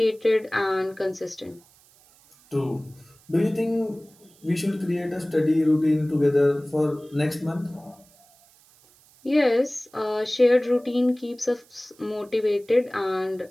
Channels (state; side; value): noise; right; hiss, 29 dB below the sound